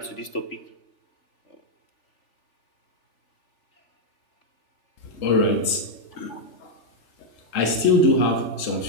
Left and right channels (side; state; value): right; late; 3.8 ms